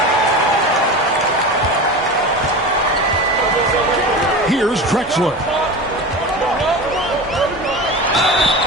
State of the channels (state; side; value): normal; both; correlation 0.29